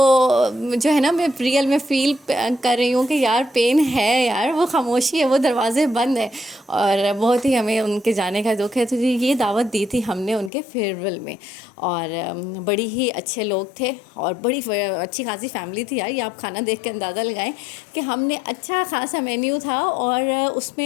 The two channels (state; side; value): drops out; right; at 10.5 s